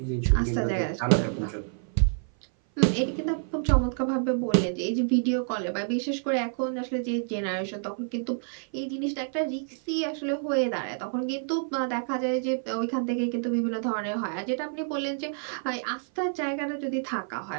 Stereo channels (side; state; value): left; silent; 56 dB below the other